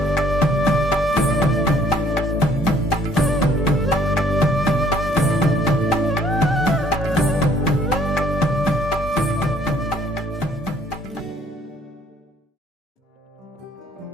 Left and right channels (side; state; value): both; normal; correlation 0.61